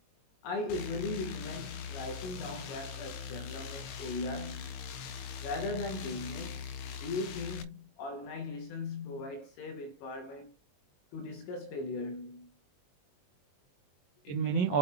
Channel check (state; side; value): late; right; 22 ms